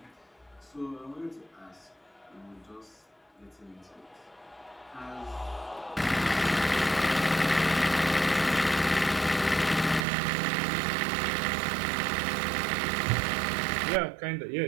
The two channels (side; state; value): left; drops out; at 10.1 s